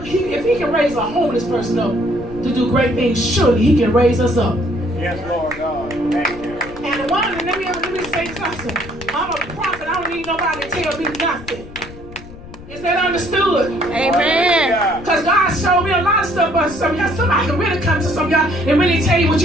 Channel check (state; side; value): noise; left; rumble, 16 dB below the sound